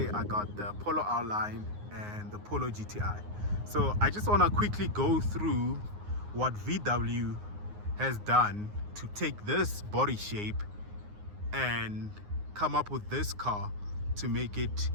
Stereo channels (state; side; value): late; left; 9.6 ms